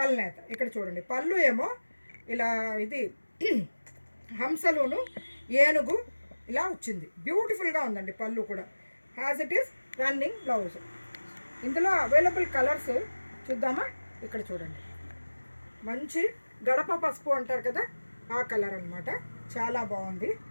కల్నేత. ఇక్కడ చూడండి, పళ్ళు ఏమో ఇలా ఇది హంసలోను ఏనుగు ఇలా వచ్చింది, బ్యూటిఫుల్గా ఉందండి పళ్ళు కూడా. As it is running blouse. ఇందులో అవైలబుల్ కలర్స్ చూద్దామా? ఇక్కడ చూడండి, మంచి గడప పసుపు అంటారు కదా, ఆ కలర్ అనమాట, చాలా బాగుంది.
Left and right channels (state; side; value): inverted; both; correlation -1.00